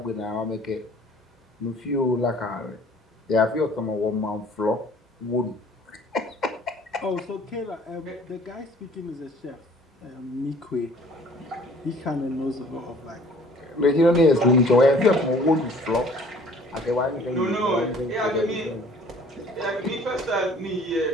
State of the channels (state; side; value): normal; both; correlation 0.53